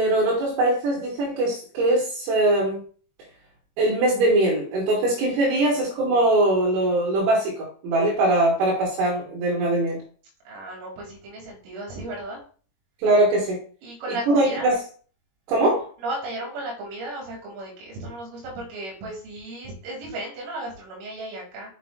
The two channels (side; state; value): left; late; 21 ms